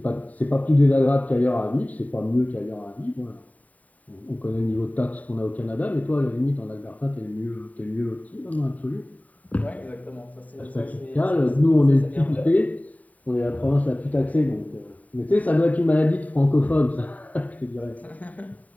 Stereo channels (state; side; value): late; right; 0.071 ms